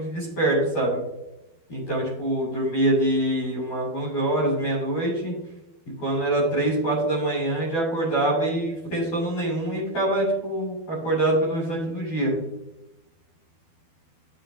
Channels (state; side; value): late; right; 12 ms